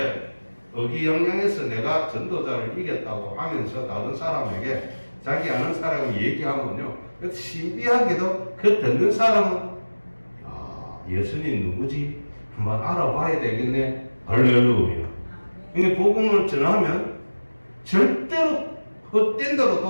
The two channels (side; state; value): both; inverted; correlation -1.00